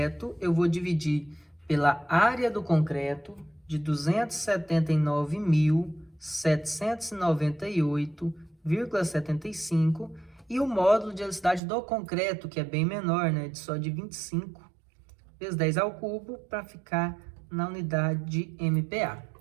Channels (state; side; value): drops out; left; at 11.6 s